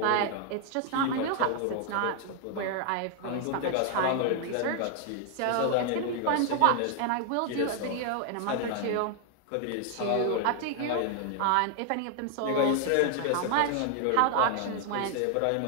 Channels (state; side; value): different; both; correlation 0.00